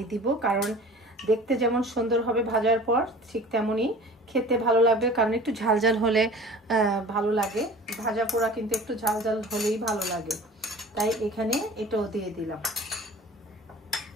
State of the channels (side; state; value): both; normal; correlation 0.42